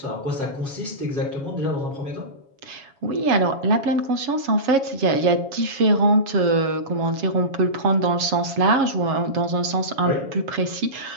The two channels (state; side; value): late; left; 7.2 ms